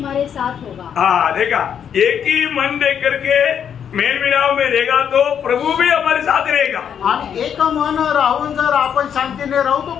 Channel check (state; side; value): quieter; right; 8.3 dB